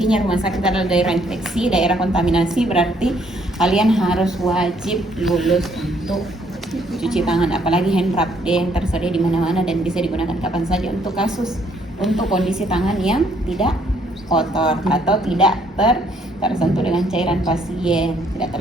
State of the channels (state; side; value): normal; both; correlation 0.67